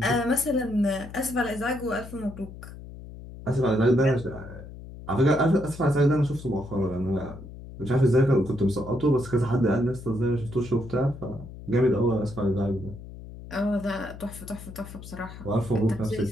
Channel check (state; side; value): noise; left; hum, 14 dB below the sound